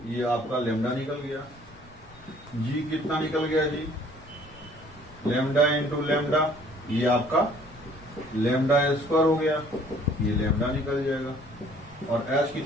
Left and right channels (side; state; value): both; normal; correlation 0.56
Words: ये आपका लेमडा निकल गया। जी कितना निकल गया जी, लेमडा इंटू लेमडा, ये आपका लेमडा स्क्वायर हो गया, ये लेमडा निकल जाएगा। और एच